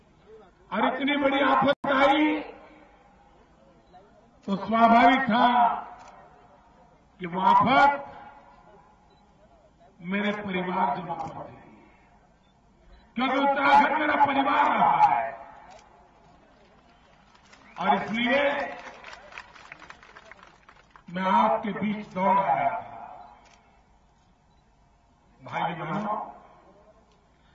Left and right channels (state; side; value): identical; both; correlation 1.00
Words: और इतनी बड़ी आफत आई तो स्वाभाविक था कि वो आफत मेरे परिवारजनों पर थी, क्योंकि उत्तराखंड मेरा परिवार रहा है। और इसलिए मैं आपके बीच दौड़ आया था। भाई बहनों,